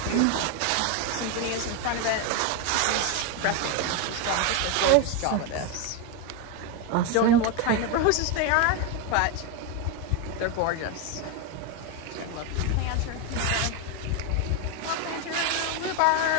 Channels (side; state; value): both; different; correlation 0.02